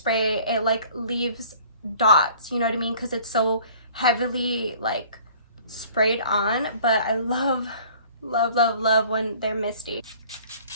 it like leaves dots, you know what I mean? Because it's so heavily like sprayed on, but I love when they're misty.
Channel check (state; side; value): inverted; both; correlation -0.51